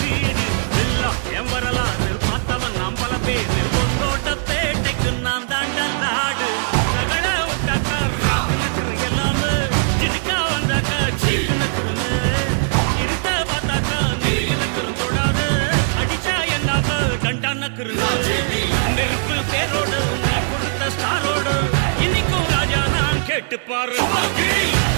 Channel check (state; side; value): silent; left; digital silence